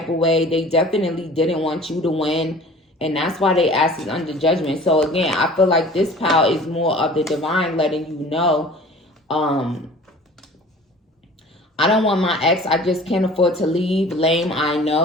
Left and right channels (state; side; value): normal; both; correlation 0.45